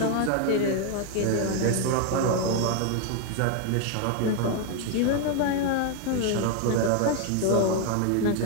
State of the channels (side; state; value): both; different; correlation 0.01